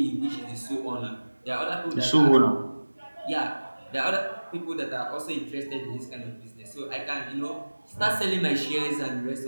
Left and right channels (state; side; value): inverted; both; correlation -1.00